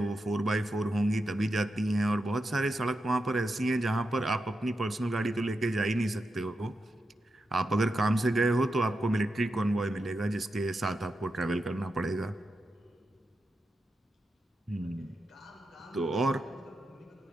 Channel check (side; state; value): both; normal; correlation 0.87